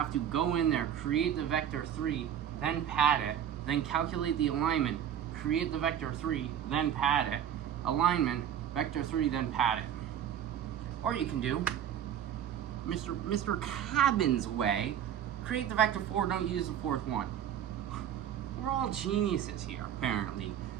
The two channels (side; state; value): left; quieter; 9.8 dB